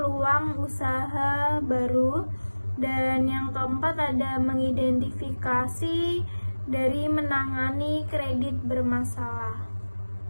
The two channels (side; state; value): both; inverted; correlation -1.00